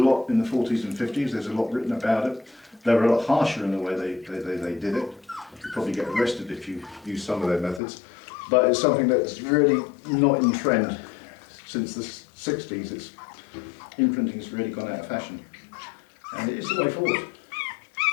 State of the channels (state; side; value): drops out; right; at 7.8 s